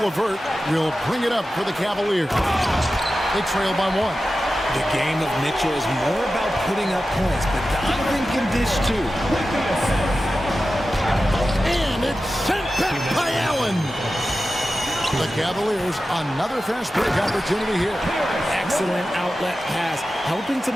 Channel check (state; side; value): normal; both; correlation 0.93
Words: LeVert will bring it up for the Cavaliers. They trail by 1. The game of Mitchell is more about putting up points, but Donovan can dish too. And it's sent back by Allen. The Cavaliers, another fast break opportunity here. Excellent outlet pass, helping to